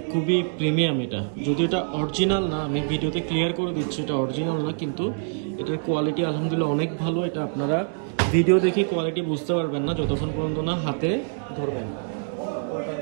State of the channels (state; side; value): silent; left; digital silence